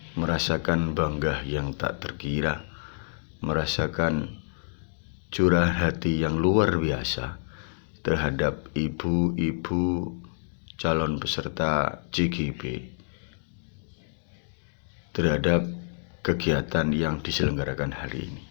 merasakan bangga yang tak terkira, merasakan curahan hati yang luar biasa terhadap ibu-ibu calon peserta CGP terhadap kegiatan yang diselenggarakan hari ini.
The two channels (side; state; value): right; silent; digital silence